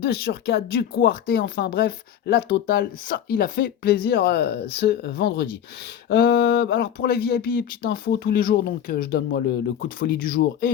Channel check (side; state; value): right; quieter; 9.6 dB